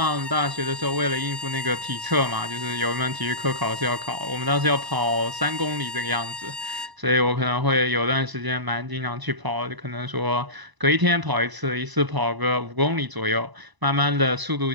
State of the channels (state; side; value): late; left; 1.0 ms